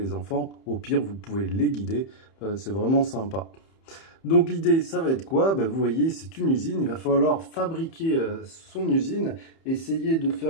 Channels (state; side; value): late; right; 30 ms